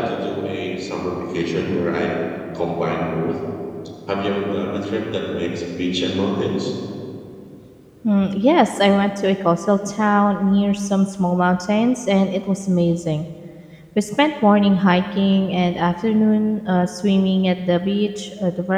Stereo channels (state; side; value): identical; both; correlation 1.00